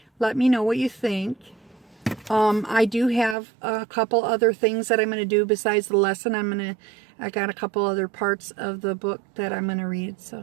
Let me know what you think. I do have a couple other things that I'm going to do besides the lesson. I got a couple other parts of the book that I'm going to read.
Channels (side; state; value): left; drops out; at 3.4 s